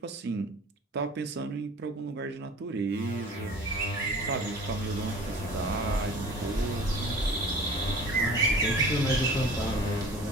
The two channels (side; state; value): both; normal; correlation 0.43